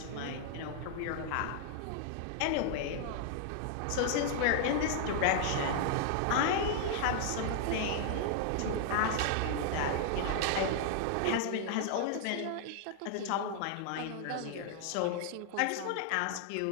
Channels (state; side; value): different; both; correlation 0.00